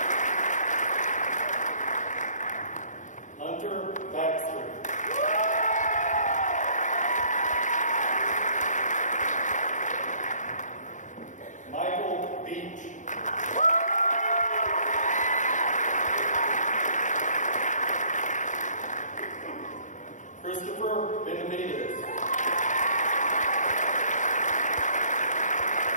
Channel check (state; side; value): late; right; 0.36 ms